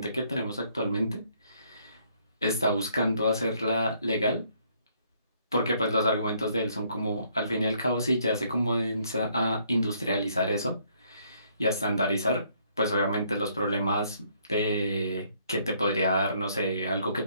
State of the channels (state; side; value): inverted; both; correlation -0.67